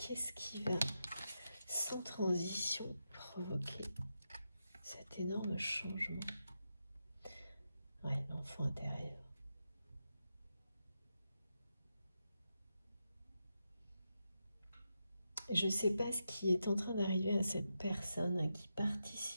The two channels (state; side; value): inverted; both; correlation -0.87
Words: qui va, sans transition, provoquer cet énorme changement? Ouais, l'enfant intérieur. Je ne sais pas ce qui est en train d'arriver à cette personne hein, qui